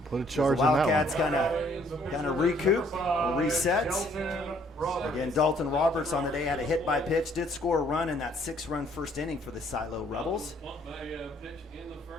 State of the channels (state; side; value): normal; both; correlation 0.63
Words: Put a charge the Wildcats kind of recoup or reset. Again, Dalton Roberts on the day had a hit by pitch, did score a run in that 6-run first inning for the Silo Rebels.